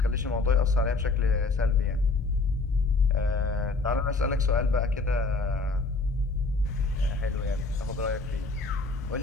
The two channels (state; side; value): quieter; right; 3.7 dB